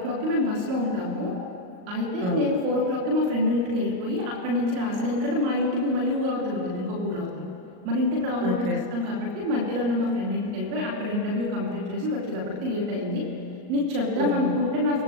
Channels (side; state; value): left; late; 38 ms